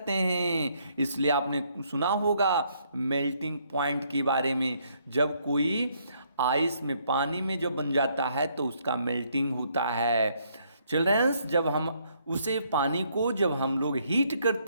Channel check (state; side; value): inverted; both; correlation -0.70